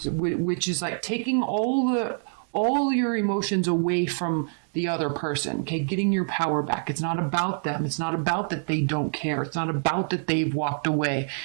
is taking all your emotions away from the other person. Okay, getting your power back. It's not about them. It's not about that they don't care. It's not about that they've walked away.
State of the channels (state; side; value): silent; left; 61 dB below the other